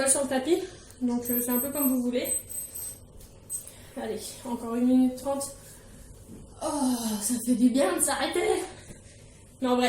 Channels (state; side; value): identical; both; correlation 1.00